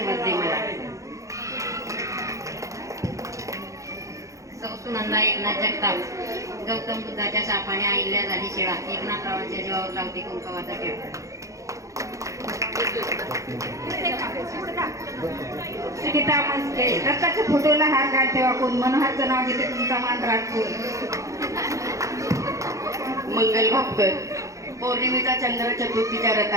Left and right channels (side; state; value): left; late; 0.15 ms